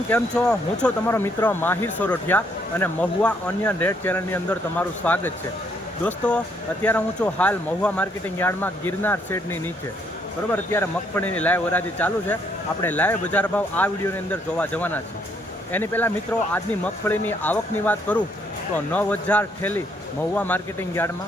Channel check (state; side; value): normal; both; correlation 0.70